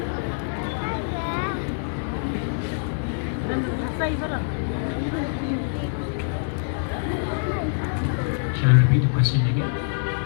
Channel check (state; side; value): silent; right; digital silence